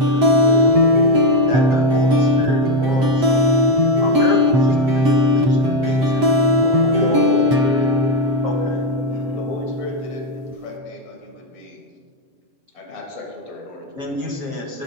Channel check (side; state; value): left; late; 7.7 ms